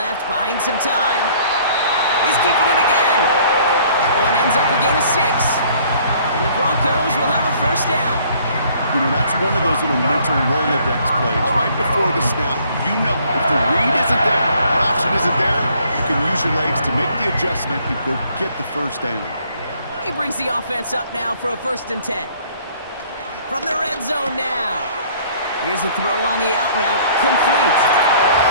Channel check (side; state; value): both; inverted; correlation -0.58